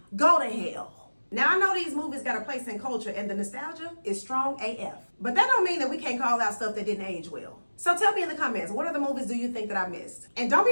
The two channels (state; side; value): inverted; both; correlation -1.00